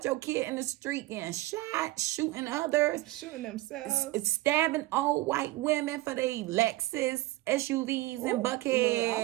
your kid in the street getting shot, shooting others, Shooting themselves. it's stabbing old white women for their Lexus SUVs and Buckhead.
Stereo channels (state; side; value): quieter; left; 18.5 dB